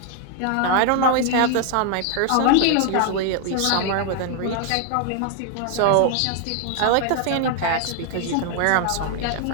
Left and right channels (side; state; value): both; different; correlation 0.00